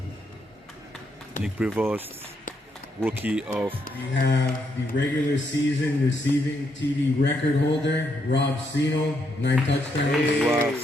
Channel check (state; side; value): normal; both; correlation 0.77